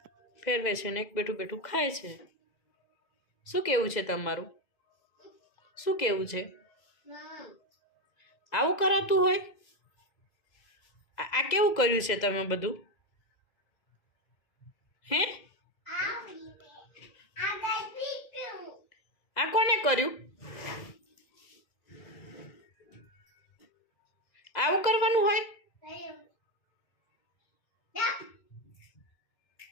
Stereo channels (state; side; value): late; right; 2.0 ms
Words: ફેરવે છે, ને એક બેઠું બેઠું ખાય છે. શું કેવું છે તમારું? શું કેવું છે? આવું કરાતું હોય? આ કેવું કર્યું છે તમે બધું? હે આ કોને કર્યું? આવું કરવાનું હોય? કયું યા